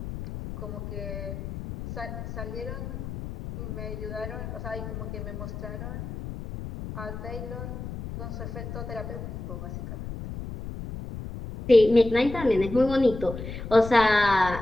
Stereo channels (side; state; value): left; noise; rumble, 8 dB below the sound